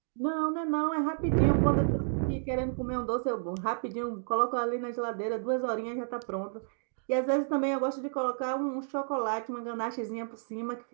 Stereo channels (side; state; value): left; silent; digital silence